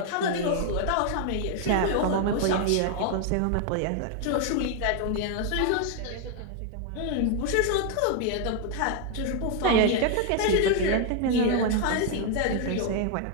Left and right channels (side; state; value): both; different; correlation 0.00